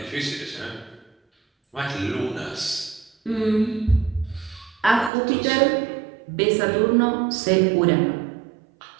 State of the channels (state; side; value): drops out; left; at 5.1 s